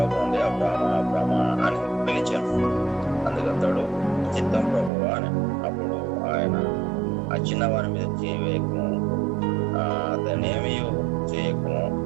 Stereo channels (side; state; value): left; drops out; at 4.9 s